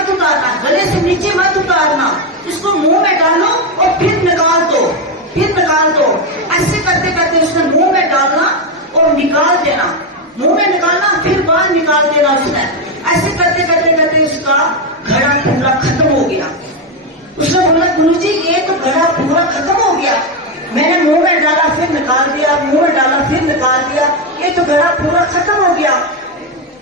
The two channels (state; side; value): normal; both; correlation 0.09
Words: उतारना, गले से नीचे मत उतारना, इसको मुंह में डालो और फिर निकाल दो, फिर निकाल दो। ऐसे करते करते उसने मुंह में डालना और निकाल देना, मुंह में निकालना फिर बाहर निकाल देना उसने। ऐसे करते करते करते उसका घड़ा पूरा खत्म हो गया। उसने बोला गुरुजी ये तो घड़ा पूरा खत्म हो गया, मैंने मुंह में डाला फिर निकाल दिया, मुंह में डाला फिर निकाल दिया, ये तो घड़ा पूरा खत्म हो गया।